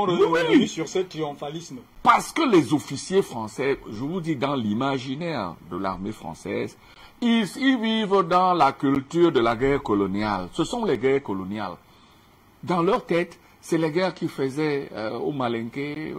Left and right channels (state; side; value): identical; both; correlation 1.00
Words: revient sur ce triomphalisme. Parce que les officiers français, je vous dis, dans l'imaginaire de l'armée française, ils vivent dans la culture de la guerre coloniale. Ce sont les guerres coloniales. Dans leur tête, c'est les guerres qu'ils faisaient au Malinké,